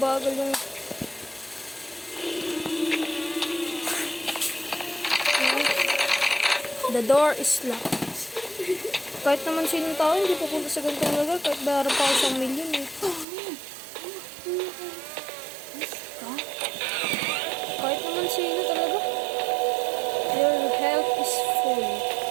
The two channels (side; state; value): left; drops out; at 13.2 s